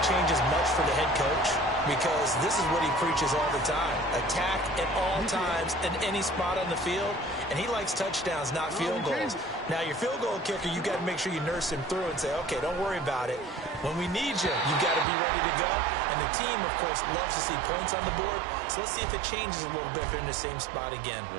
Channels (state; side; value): drops out; left; at 15.1 s